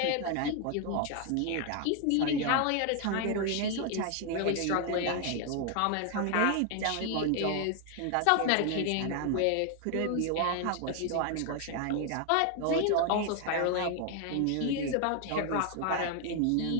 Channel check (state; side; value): different; both; correlation 0.00